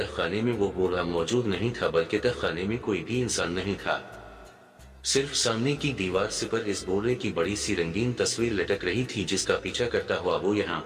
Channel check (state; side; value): identical; both; correlation 1.00